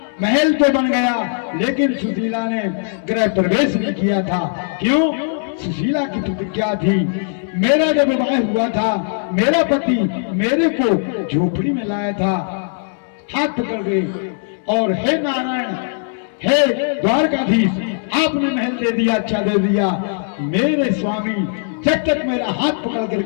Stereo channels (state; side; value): silent; right; 66 dB below the other